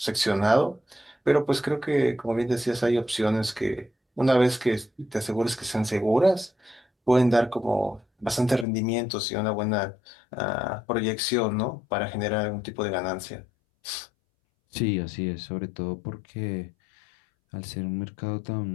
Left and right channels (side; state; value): right; drops out; at 8.7 s